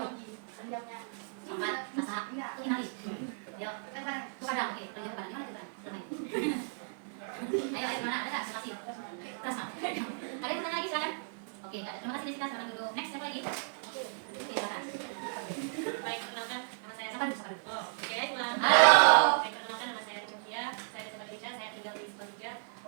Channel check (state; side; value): silent; left; digital silence